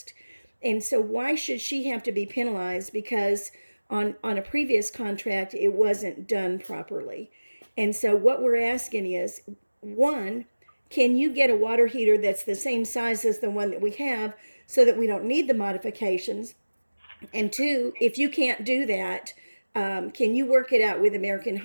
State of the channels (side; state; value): both; inverted; correlation -1.00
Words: And so why should she have to be penalized because on a previous contract it wasn't done properly? And so what we're asking is, one, can you get a water heater that's the same size as the one that we have, so that we don't need the modifications? And two, if you can't do that, can you work it out with American